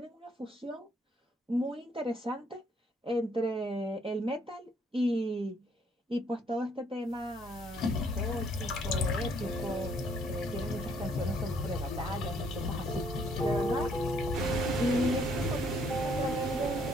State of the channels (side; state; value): both; normal; correlation 0.66